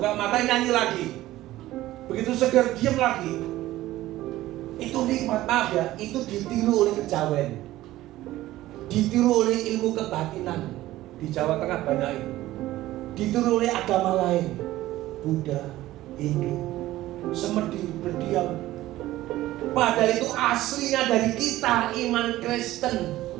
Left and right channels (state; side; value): quieter; left; 15.8 dB